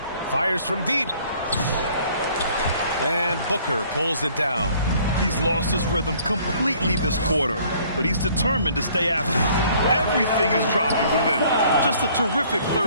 fires from deep. And Booker pulls it down. He's lost his rhythm completely this quarter, but he's determined to stay after it. Everything is dropping for them. Just a terrific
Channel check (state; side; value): inverted; both; correlation -0.58